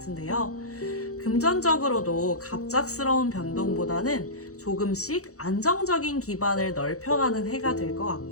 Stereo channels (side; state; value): right; late; 0.65 ms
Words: 금전적으로도 갑작스러운 변동보다는 조금씩 안정적인 기반을 넓혀가는 해가 될 것